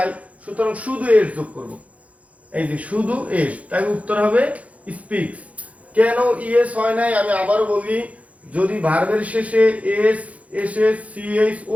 সুতরাং শুধু এস যোগ করব, এই যে শুধু এস, তাই উত্তর হবে স্পিক্স। কেন ইএস হয় নাই আমি আবার বলি, যদি ভার্বের শেষে এস, এসএস, সিএস, ও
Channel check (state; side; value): late; left; 0.067 ms